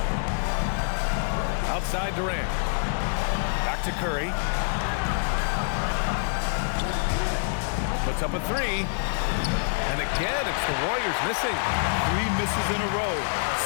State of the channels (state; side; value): silent; right; digital silence